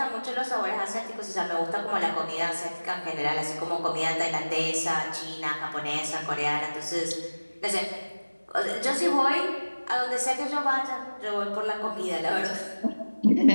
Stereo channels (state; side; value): inverted; both; correlation -1.00